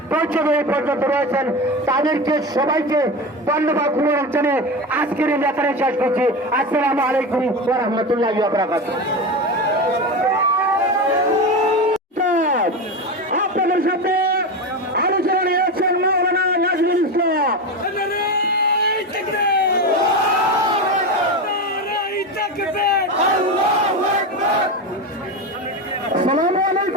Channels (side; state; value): both; normal; correlation 0.21